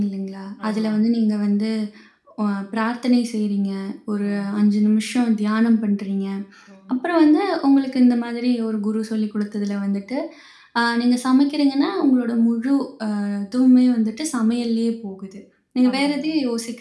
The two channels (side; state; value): both; identical; correlation 1.00